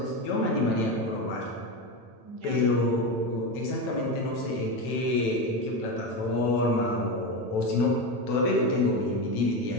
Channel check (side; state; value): right; late; 9.0 ms